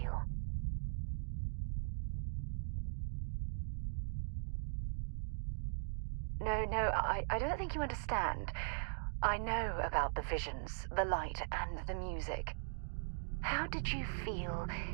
No, I don't think you understand. I know about the visions, the light, and the music. How did you feel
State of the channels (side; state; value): left; silent; digital silence